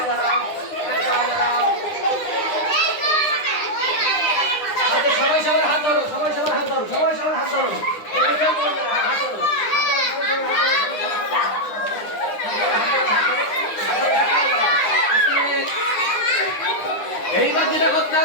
দাঁড়াও, এক পায়ে দাঁড়াও। আচ্ছা, সবাই সবার হাত ধরো, সবাই সবার হাত ধরো, সবাই সবার হাত ধরো, এটা কেউ করবে না, হাত ধরো, এইবার যেটা করতে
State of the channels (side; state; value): right; late; 9.8 ms